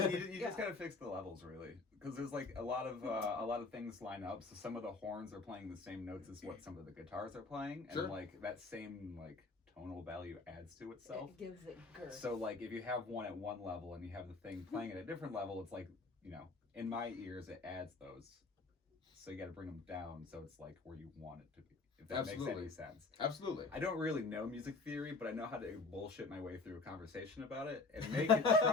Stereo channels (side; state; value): right; quieter; 3.8 dB